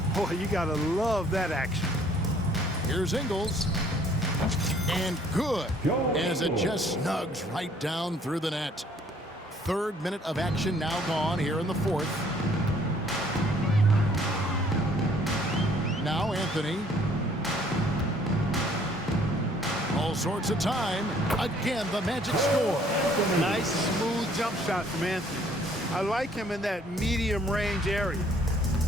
Boy, you got to love that action. Here's Ingles. And good, as it just snugs right down through the net. 3rd minute of action now gone here in the fourth. Now Anthony. All sorts of time. Again, the Magic score. Nice, smooth jump shot from Anthony. I like him in that medium range area.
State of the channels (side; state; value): both; normal; correlation 0.60